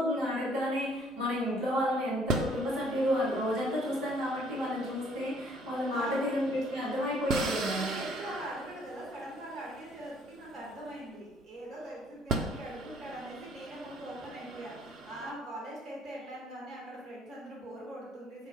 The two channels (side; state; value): both; normal; correlation 0.61